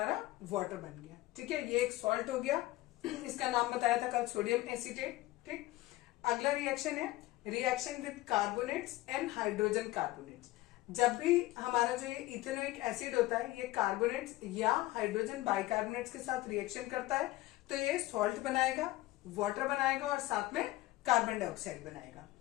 वाटर बन गया, ठीक है। ये एक सॉल्ट हो गया, इसका नाम बताया था कल, सोडियम एसीटेट, ठीक। अगला रिएक्शन है reaction with carbonates and hydrogen carbonates. जब भी हमारा जो ये इथेनोइक एसिड होता है ये कार्बोनेट्स या हाइड्रोजन बाइकार्बोनेट्स के साथ रिएक्शन करता है तो ये सॉल्ट बनाएगा, वाटर बनाएगा और साथ में कार्बन डाइऑक्साइड बनाएगा।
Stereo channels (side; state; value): right; quieter; 17.9 dB